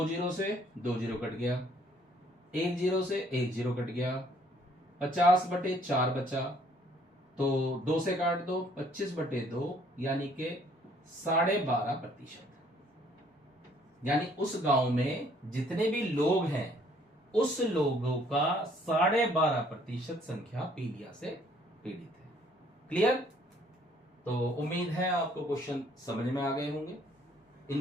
जीरो से 2 जीरो कट गया, 1 जीरो से 1 जीरो कट गया, 50 बटे 4 बचा, तो 2 से काट दो, 25 बटे 2, यानी के 12.5%। यानी उस गांव में जितने भी लोग हैं उस लोगों का 12.5% संख्या पीलिया से पीड़ित है। क्लियर। तो उम्मीद है आपको क्वेश्चन समझ में आ गए होंगे। इन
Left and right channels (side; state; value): both; normal; correlation 0.62